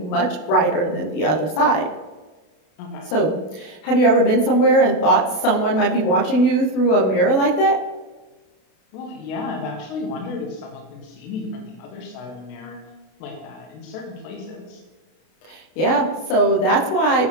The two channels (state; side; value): late; right; 32 ms